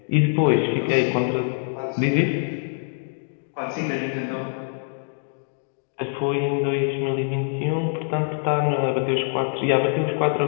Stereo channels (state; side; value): silent; right; digital silence